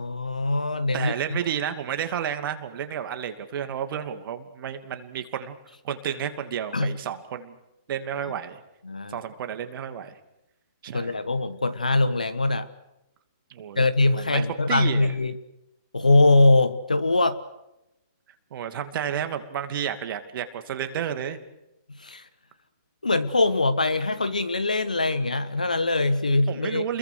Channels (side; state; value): both; inverted; correlation -0.78